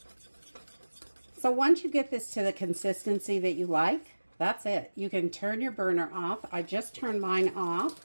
So once you get this to the consistency that you like, that's it. You can turn your burner off. I just turned mine off,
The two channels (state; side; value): inverted; both; correlation -1.00